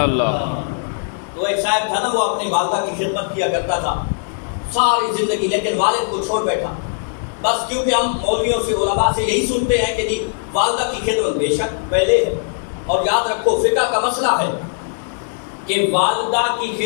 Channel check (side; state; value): right; silent; digital silence